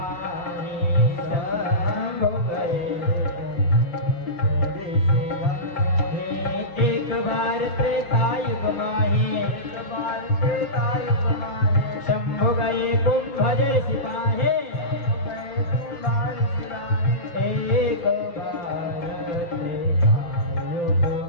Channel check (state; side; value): late; right; 5.8 ms